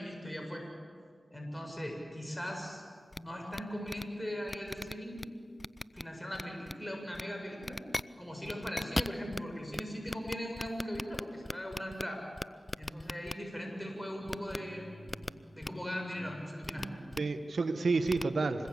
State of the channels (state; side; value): normal; both; correlation 0.94